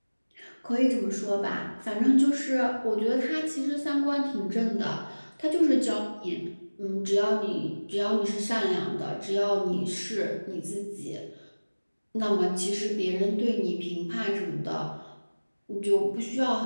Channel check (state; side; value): inverted; both; correlation -1.00